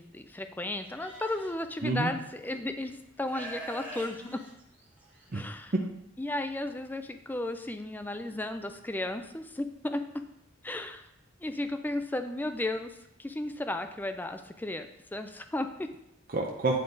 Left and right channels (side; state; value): both; normal; correlation 0.66